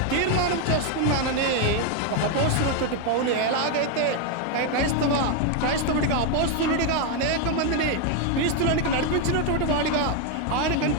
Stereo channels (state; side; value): different; both; correlation 0.01